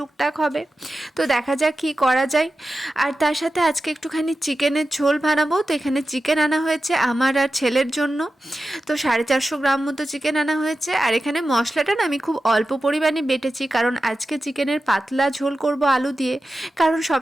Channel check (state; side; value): normal; both; correlation 0.93